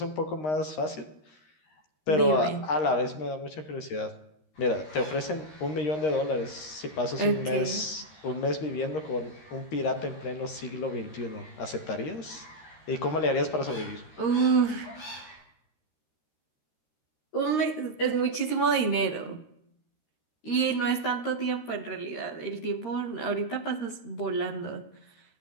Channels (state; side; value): late; right; 13 ms